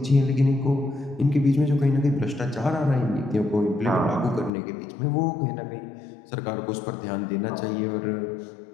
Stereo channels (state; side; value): drops out; right; at 4.5 s